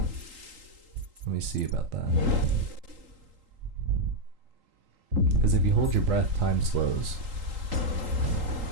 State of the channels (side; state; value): left; late; 3.8 ms